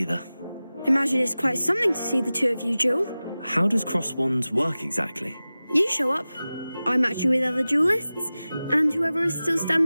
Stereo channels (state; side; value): inverted; both; correlation -0.96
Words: Imagine it's quite something to see the two of you duel. How does cross wands work exactly? You show up, I match you with other duelists, and whoever is still